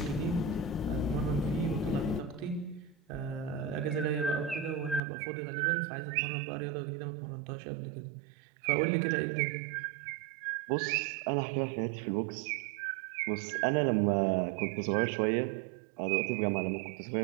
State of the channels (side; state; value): left; drops out; at 5.0 s